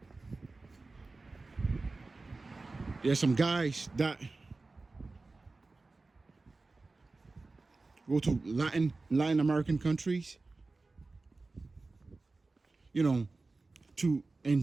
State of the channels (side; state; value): left; quieter; 3.5 dB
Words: There are some guys that go to Latin American countries, to